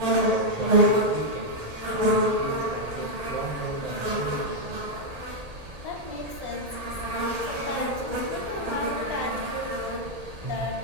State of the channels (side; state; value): left; late; 1.8 ms